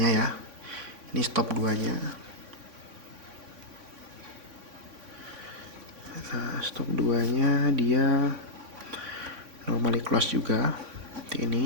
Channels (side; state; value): left; late; 3.5 ms